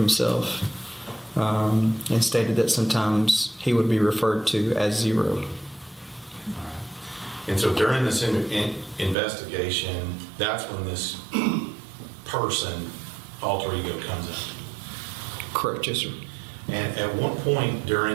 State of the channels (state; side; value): drops out; left; at 9.2 s